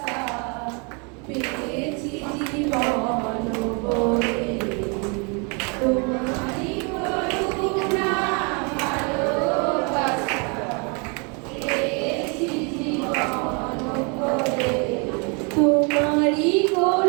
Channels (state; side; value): quieter; left; 33.9 dB